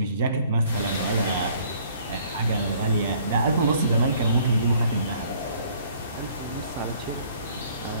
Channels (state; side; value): inverted; both; correlation -0.58